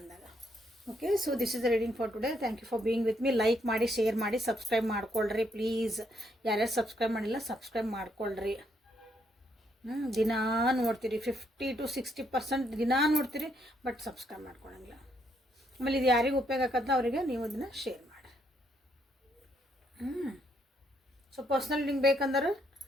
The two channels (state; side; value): normal; both; correlation 0.73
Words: Okay, so this is the reading for today. Thank you for being with me. Like ಮಾಡಿ, ಶೇರ್ ಮಾಡಿ, ಸಬ್ಸ್ಕ್ರೈಬ್ ಮಾಡ್ಕೊಳ್ರಿ ಪ್ಲೀಸ್. ಯಾರ್ಯಾರು ಸಬ್ಸ್ಕ್ರೈಬ್ ಮಾಡಿಲ್ಲ ಸಬ್ಸ್ಕ್ರೈಬ್ ಮಾಡ್ಕೊಳ್ರಿ. ದಿನಾ ನೋಡ್ತೀರಿ, 50 to 60% ದಿನಾ ನೋಡ್ತೀರಿ, ಬಟ್ ಸಬ್ಸ್ಕ್ರೈಬ್ ಮಾಡ್ಕೊಳಂಗಿಲ್ಲ. ಆಮೇಲೆ ಇದು ಯಾರಿಗೆ ಉಪಯೋಗ ಆಗತ್ತ ಅವರಿಗೆ ನೀವು ಅದನ್ನು ಶೇರ್ ಮಾಡಿ. ಸೊ ಪರ್ಸ್ನಲ್ ಲಿಂಕ್ ಬೇಕಂದ್ರೆ